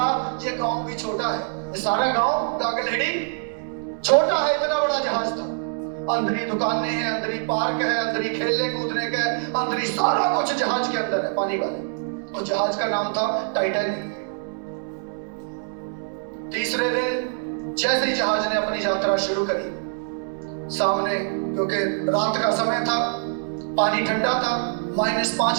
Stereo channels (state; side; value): silent; left; 62 dB below the other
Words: ये गांव भी छोटा है, ये सारा गांव गागलहेड़ी छोटा है, इतना बड़ा जहाज था। अंदर ही दुकानें हैं, अंदर ही पार्क है, अंदर ही खेलने कूदने का, अंदर ही सारा कुछ जहाज के अंदर है, पानी वाले। और जहाज का नाम था टाइटैनिक। तीसरे दिन जैसे ही जहाज ने अपनी यात्रा शुरू करी, सामने क्योंकि रात का समय था, पानी ठंडा था, -5